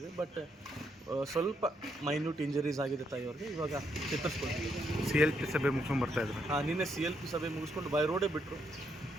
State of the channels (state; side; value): normal; both; correlation 0.76